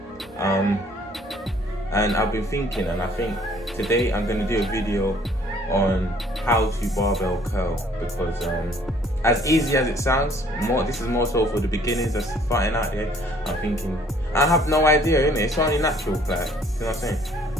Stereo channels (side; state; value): both; normal; correlation 0.59